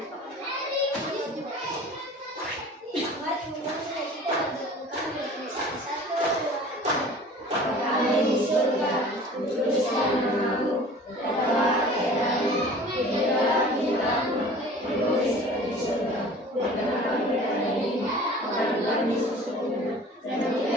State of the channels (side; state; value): both; normal; correlation 0.44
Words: Kami di surga, dituliskan namamu, berkatalah keadaanmu, hiduplah hidupmu, ditulis di surga, bukan kami dan ini, maka kami sesungguhnya, dan